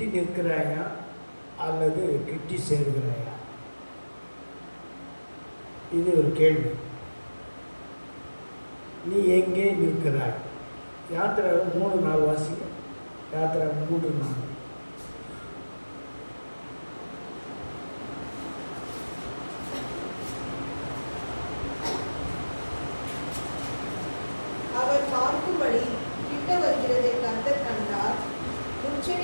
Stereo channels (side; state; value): both; inverted; correlation -1.00